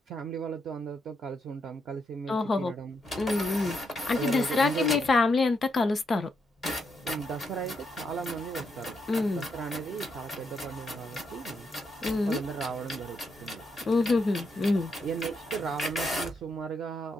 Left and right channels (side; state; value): both; normal; correlation 0.80